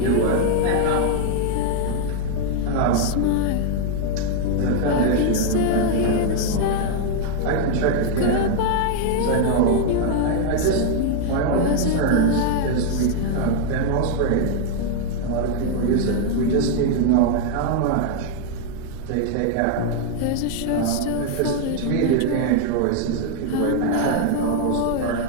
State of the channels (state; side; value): different; both; correlation 0.00